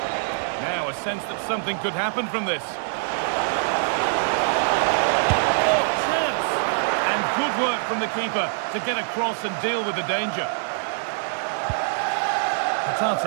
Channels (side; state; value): left; silent; 63 dB below the other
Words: Now a sense that something could happen from this. Oh, chance! And good work from the keeper to get across and deal with the danger.